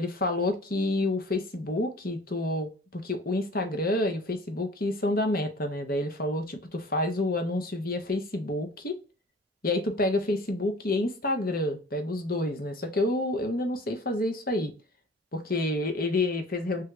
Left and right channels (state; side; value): normal; both; correlation 0.45